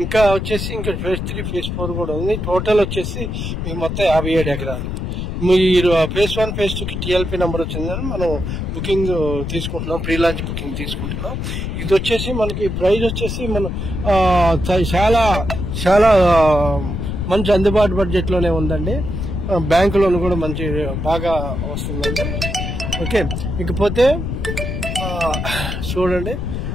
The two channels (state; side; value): noise; left; rumble, 4 dB below the sound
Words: ఇంకా వచ్చేసి ఇంకా ఫేజ్ 3 ఫేజ్ 4 కూడా ఉంది. టోటల్ వచ్చేసి మీకు మొత్తం 57 ఎకరాలు. మీరు ఫేజ్ 1 ఫేజ్ 2 కి టీఎల్పీ నెంబర్ వచ్చిందని మనం బుకింగ్ తీసుకుంటున్నాం, ప్రీ లాంచ్ బుకింగ్ తీసుకుంటున్నాం. ఇది వచ్చేసి మనకి ప్రైస్ వచ్చేసి మనం చాలా చాలా మంచి అందుబాటు బడ్జెట్ లోనే ఉందండి. బ్యాంకు లోన్ కూడా మంచి బాగా వస్తుందండి. ఓకే, ఇకపోతే చూడండి,